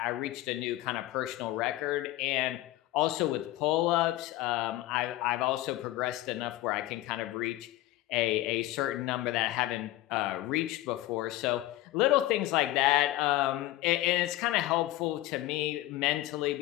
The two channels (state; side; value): quieter; right; 16.3 dB